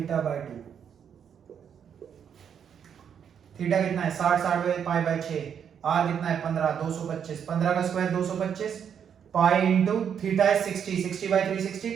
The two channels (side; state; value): left; quieter; 8.0 dB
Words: by 2। Theta कितना है 60, 60 बाय पाई बाय 6, आर कितना है 15, 225, 15 का स्क्वायर 225, पाई इंटू थीटा है 60, 60 by 360